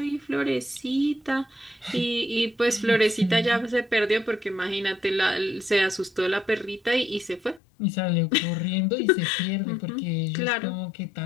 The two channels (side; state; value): right; drops out; at 7.6 s